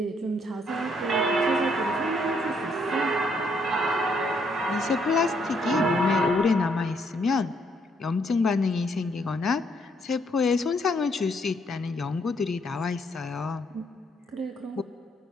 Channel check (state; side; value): normal; both; correlation 0.71